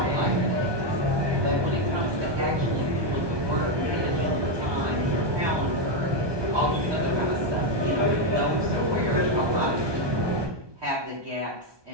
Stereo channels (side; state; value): left; late; 1.2 ms